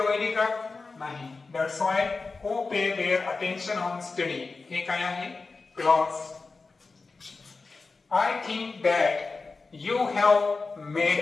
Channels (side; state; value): right; quieter; 4.0 dB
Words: व्हायली का? नाही. That's why who pay their attention on study हे काय आहे clause. I think that you have